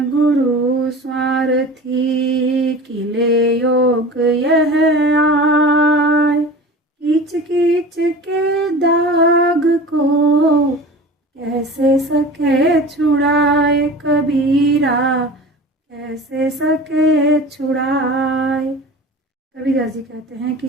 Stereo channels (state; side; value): normal; both; correlation 0.36